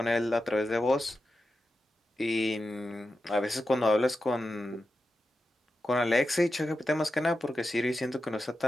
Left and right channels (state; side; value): normal; both; correlation 0.90